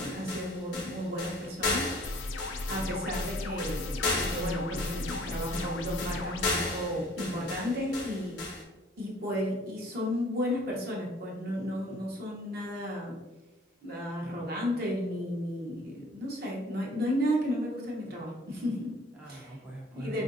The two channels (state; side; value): normal; both; correlation 0.54